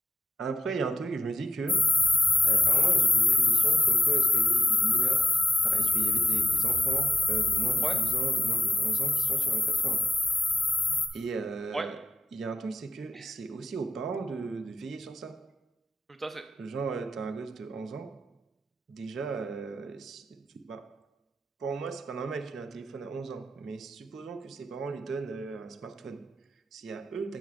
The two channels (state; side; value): normal; both; correlation 0.84